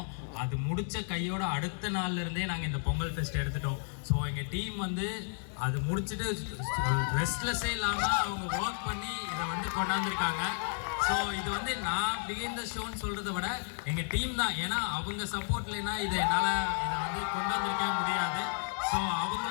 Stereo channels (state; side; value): silent; right; 56 dB below the other